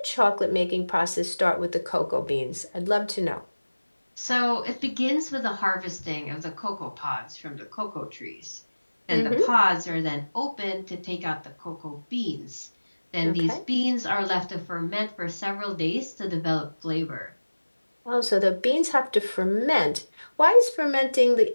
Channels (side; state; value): both; inverted; correlation -1.00